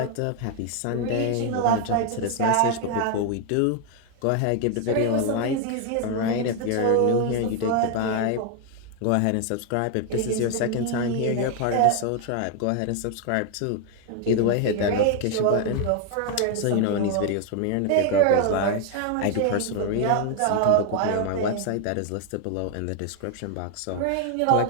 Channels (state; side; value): different; both; correlation 0.01